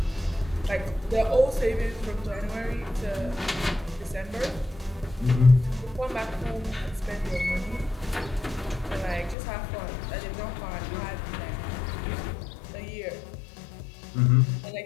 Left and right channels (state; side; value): drops out; right; at 9.3 s